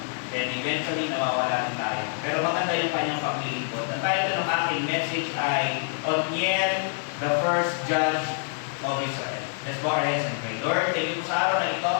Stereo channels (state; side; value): silent; right; 58 dB below the other